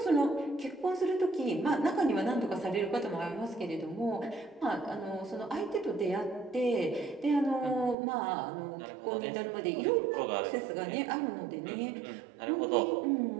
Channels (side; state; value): left; drops out; at 8.0 s